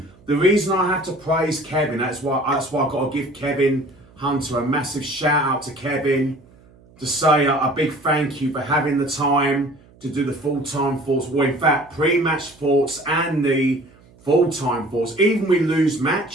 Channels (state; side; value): noise; right; hum, 27 dB below the sound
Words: the reason I have to praise Kevin, that's why I've got to give Kevin Hunter a massive shout out to Kevin, to say a big thank you for having the time to do the full-time thoughts, well, in fact, pre-match thoughts and the full-time thoughts. Even we lose